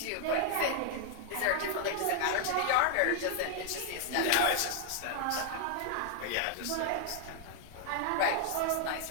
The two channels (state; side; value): different; both; correlation 0.00